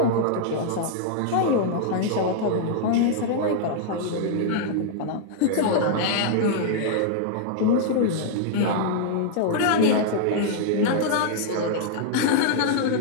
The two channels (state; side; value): different; both; correlation -0.01